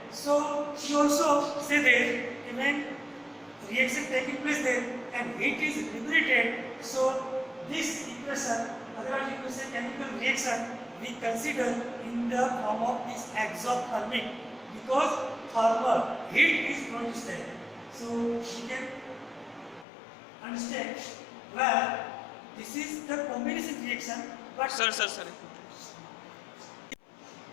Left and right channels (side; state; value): right; drops out; at 19.9 s